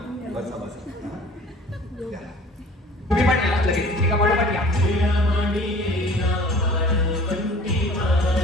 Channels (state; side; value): normal; both; correlation 0.48